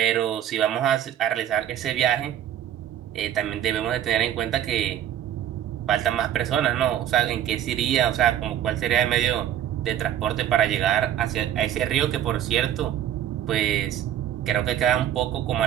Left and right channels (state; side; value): quieter; left; 10.9 dB